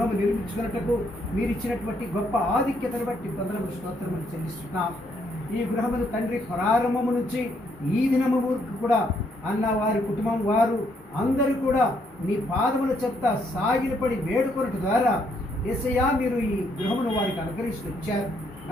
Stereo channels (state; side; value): normal; both; correlation 0.72